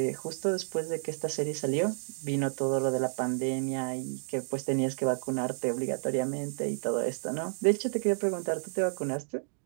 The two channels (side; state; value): left; silent; digital silence